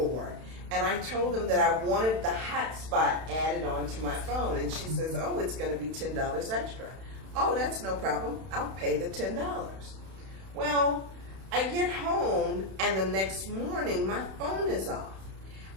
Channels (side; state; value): left; late; 31 ms